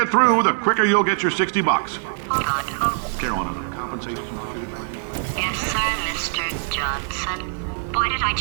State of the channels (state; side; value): silent; left; 64 dB below the other